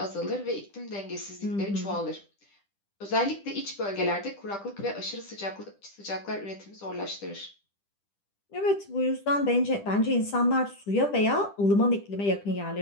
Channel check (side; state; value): right; late; 10 ms